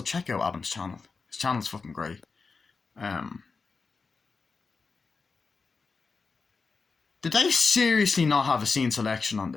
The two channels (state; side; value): quieter; right; 4.6 dB